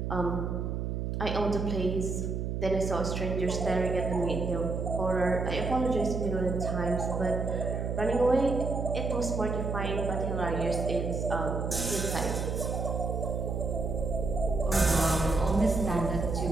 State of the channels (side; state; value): right; noise; hum, 2 dB below the sound